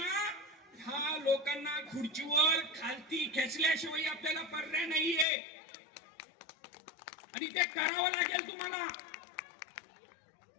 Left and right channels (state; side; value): drops out; right; at 5.2 s